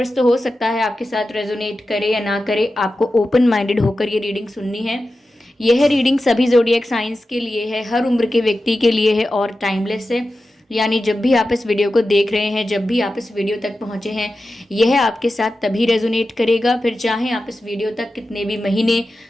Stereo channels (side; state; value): both; normal; correlation 0.93